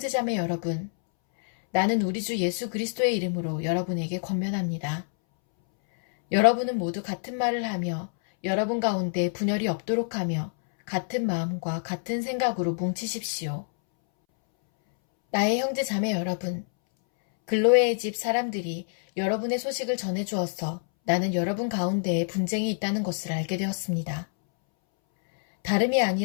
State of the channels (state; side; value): silent; right; 60 dB below the other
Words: 여러분, 나는 우리 주 예수 그리스도의 이름으로 여러분에게 권면합니다. 여러분은 모두 같은 말을 하며 여러분 가운데 분열이 없도록 하며 같은 마음과 같은 생각으로 뭉치십시오. 나의 형제자매 여러분, 글로에의 집 사람들이 여러분의 소식을 전해주어서 나는 여러분 가운데에 분쟁이 있다는 것을 알게 되었습니다. 다름이